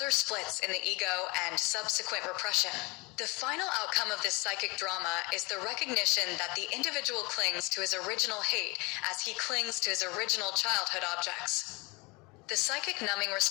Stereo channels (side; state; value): right; quieter; 26.3 dB